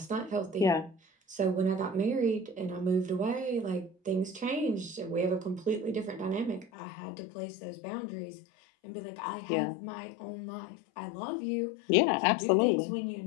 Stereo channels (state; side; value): drops out; right; at 6.7 s